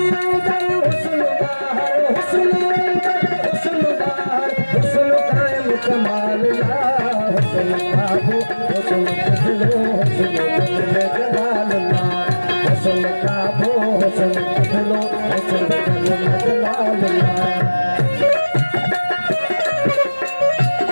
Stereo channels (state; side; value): inverted; both; correlation -1.00